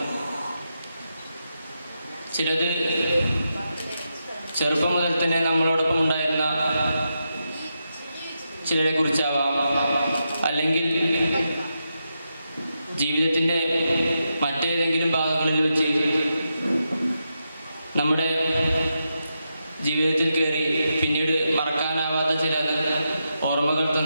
ചിലത് ചെറുപ്പം മുതൽ തന്നെ നമ്മളോടൊപ്പം ഉണ്ടായിരുന്ന ചിലരെ കുറിച്ചാവാം, അല്ലെങ്കിൽ ജീവിതത്തിൻ്റെ മറ്റേതെങ്കിലും ഭാഗങ്ങളിൽ വെച്ച് നമ്മുടെ ജീവിതത്തിൽ കയറി പിന്നീട് മറക്കാനാവാത്ത ചില ഓർമ്മകൾ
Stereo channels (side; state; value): both; inverted; correlation -0.85